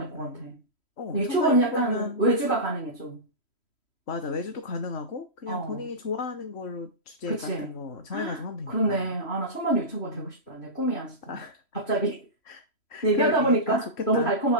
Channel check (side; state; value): right; late; 3.1 ms